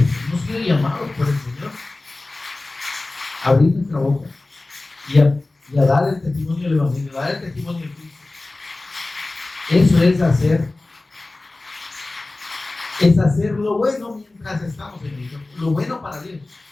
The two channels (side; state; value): right; quieter; 3.1 dB